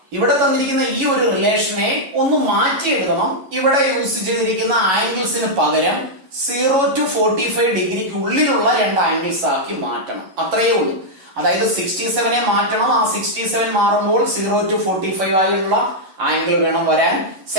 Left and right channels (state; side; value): late; left; 11 ms